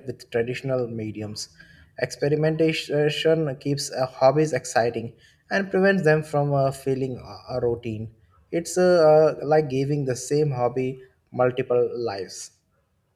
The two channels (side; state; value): both; identical; correlation 1.00